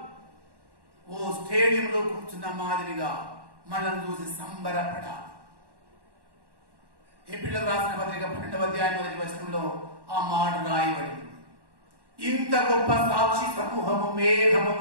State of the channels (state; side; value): late; left; 1.1 ms